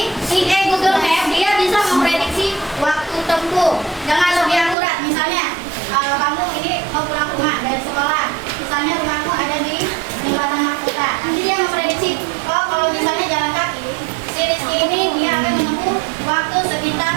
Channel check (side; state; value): left; drops out; at 4.8 s